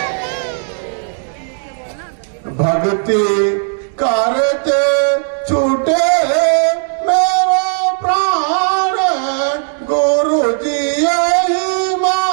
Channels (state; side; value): silent; left; 63 dB below the other